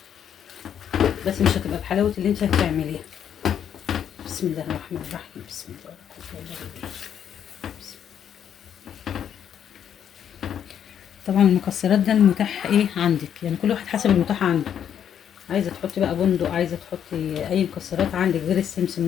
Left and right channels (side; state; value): right; quieter; 9.0 dB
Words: بس مش هتبقى بحلاوه اللي انت هتعمليها. بسم الله الرحمن الرحيم. بسم الله الرحمن الرحيم. طبعا المكسرات ده المتاح ايه عندك، يعني كل واحد حسب المتاح عنده. عايزه تحطي بقى بندق، عايزه تحطي اي مكسرات عندك غير السمسم